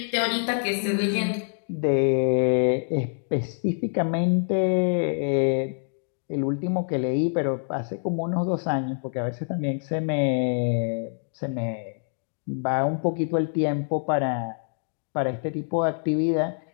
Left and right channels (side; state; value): right; silent; digital silence